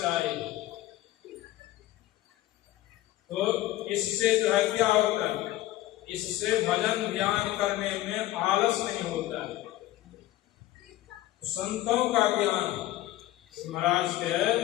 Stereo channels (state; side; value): quieter; right; 15.6 dB